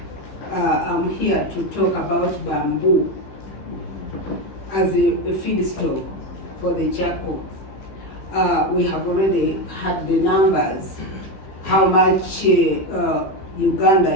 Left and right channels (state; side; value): late; right; 15 ms